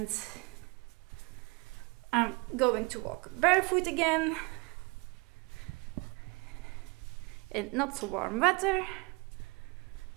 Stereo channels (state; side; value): quieter; left; 27.1 dB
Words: I'm going to walk barefoot again in not so warm weather.